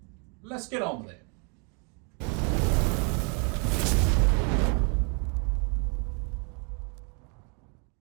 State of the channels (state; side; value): quieter; left; 36.9 dB